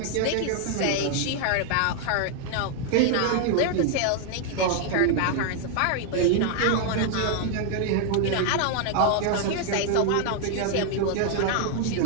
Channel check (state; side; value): different; both; correlation 0.00